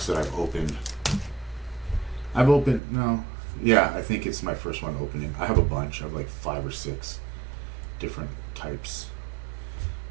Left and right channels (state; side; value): drops out; left; at 2.8 s